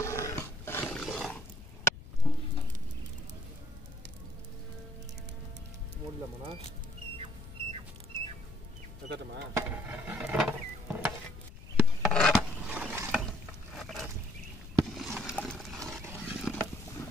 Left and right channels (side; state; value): left; noise; rumble, 15 dB below the sound